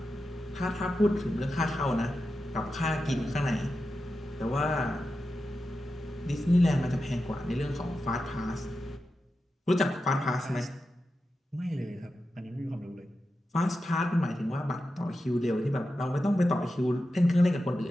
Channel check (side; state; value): both; normal; correlation 0.90